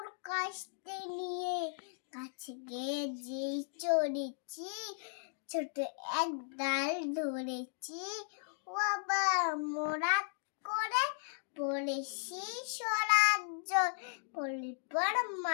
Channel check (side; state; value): right; silent; digital silence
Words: কাশতে নিয়ে কাছে গিয়ে যেই চড়েছি ছোট এক ডাল ধরেছি বাবা মোরাত করে পড়েছি স্বরাজ্য পর